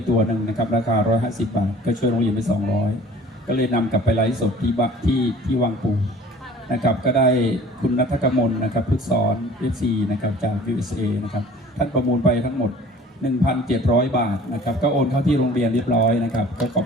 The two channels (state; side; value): normal; both; correlation 0.47